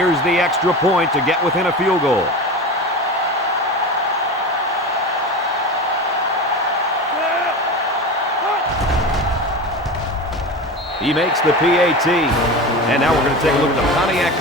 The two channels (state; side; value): normal; both; correlation 0.27